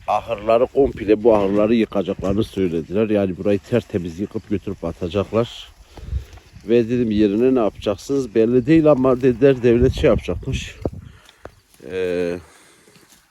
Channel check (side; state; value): both; identical; correlation 1.00